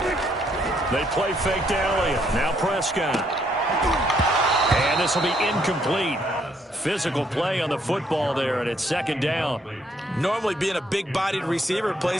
They play fake to Elliott. Now Prescott. And this will be incomplete. Physical play on the football there, and it's second down. Normally being a big-bodied receiver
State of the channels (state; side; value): normal; both; correlation 0.71